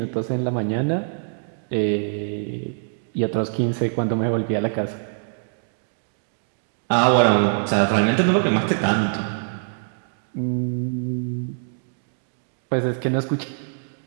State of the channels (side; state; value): left; silent; digital silence